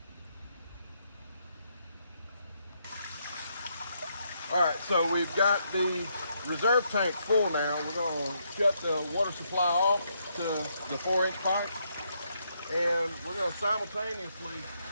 All right, so we've got the reserve tank full now. We're going to shut the water supply off to the 4-inch pipe, and we're going to simultaneously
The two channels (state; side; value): inverted; both; correlation -0.77